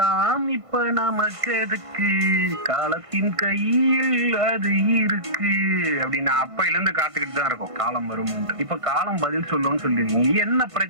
இப்ப நமக்கு எதுக்கு, காலத்தின் கையில் அது இருக்கு அப்படின்னு அப்பையில இருந்து காத்துக்கிட்டு தான் இருக்கும் காலம் வரும். இப்ப காலம் பதில் சொல்லும்னு சொல்லிருக்கீங்க. என்ன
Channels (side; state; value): left; late; 1.5 ms